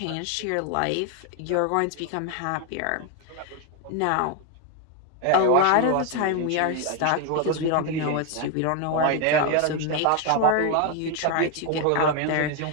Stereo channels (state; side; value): different; both; correlation 0.01